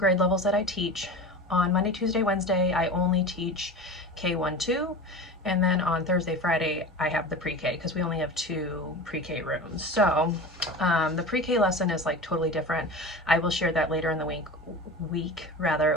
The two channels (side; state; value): both; normal; correlation 0.31